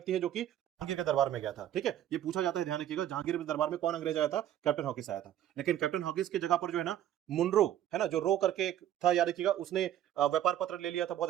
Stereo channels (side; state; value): left; quieter; 11.7 dB